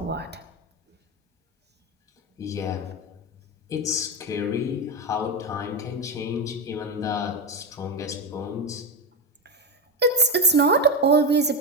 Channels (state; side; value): normal; both; correlation 0.14